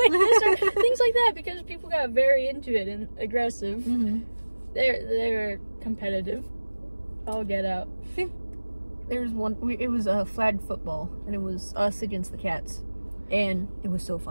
this, or things like that, because people got very into it and aggressive. Mm-hmm. They're competitive. I'll get out. I think there's one. It was a flag football, and it was us against the cats, and it was so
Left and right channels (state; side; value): inverted; both; correlation -1.00